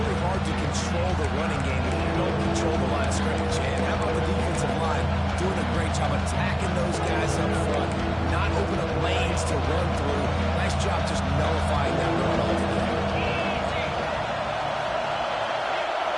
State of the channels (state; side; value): identical; both; correlation 1.00